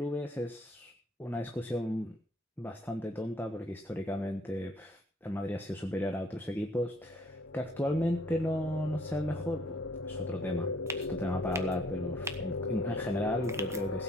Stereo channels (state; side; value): normal; both; correlation 0.61